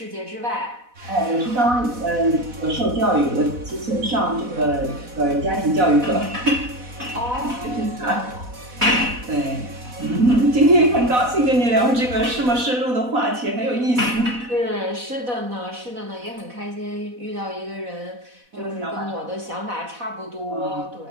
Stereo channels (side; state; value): left; late; 4.1 ms